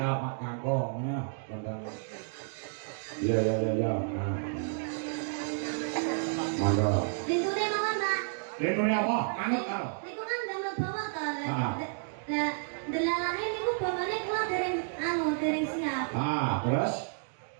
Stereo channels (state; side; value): silent; left; digital silence